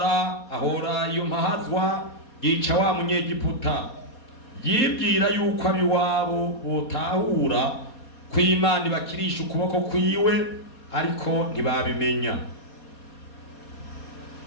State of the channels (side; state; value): right; late; 4.2 ms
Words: ahora iyo mpahazwa yica wa munyegiputa. Yibwira yuko abiwabo botahura ko Imana ibakirisha ukuboko kwiwe ariko ntibabimenya.